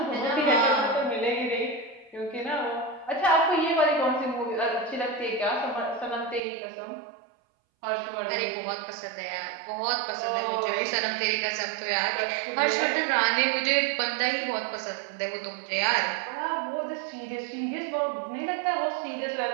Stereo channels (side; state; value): left; drops out; at 6.4 s